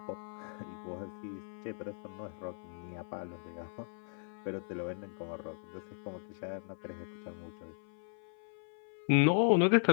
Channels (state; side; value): silent; right; 53 dB below the other